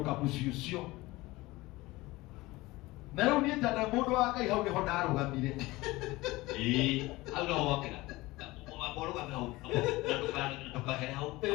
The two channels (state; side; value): quieter; right; 20.2 dB